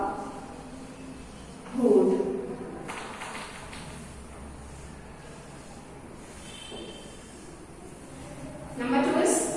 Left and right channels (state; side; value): identical; both; correlation 1.00